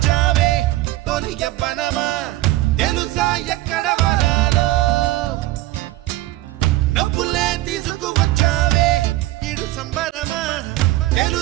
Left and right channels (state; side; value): quieter; left; 17.2 dB